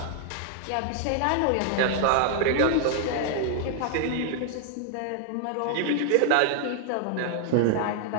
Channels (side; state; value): both; different; correlation -0.01